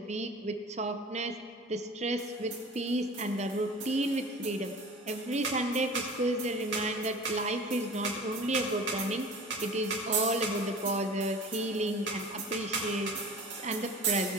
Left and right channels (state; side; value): normal; both; correlation 0.40